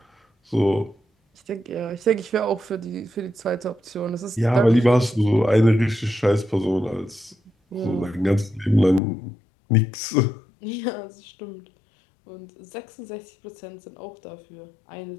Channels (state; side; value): drops out; right; at 9.0 s